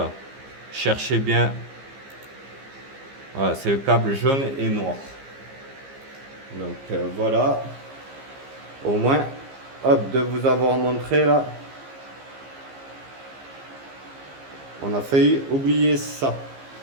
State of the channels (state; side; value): late; left; 15 ms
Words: cherchez bien. Voilà, c'est le câble jaune et noir. Donc voilà, au moins, hop, de vous avoir montré là. On a failli oublier ça.